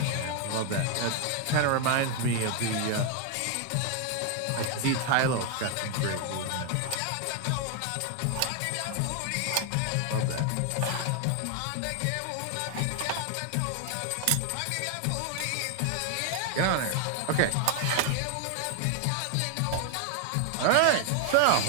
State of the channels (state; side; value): different; both; correlation 0.00